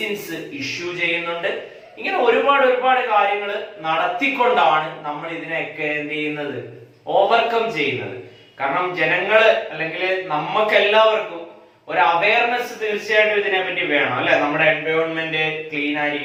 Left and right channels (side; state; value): both; identical; correlation 1.00